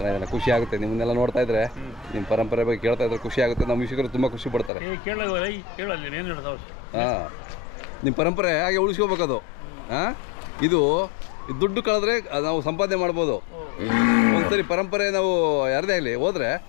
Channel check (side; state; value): right; drops out; at 4.7 s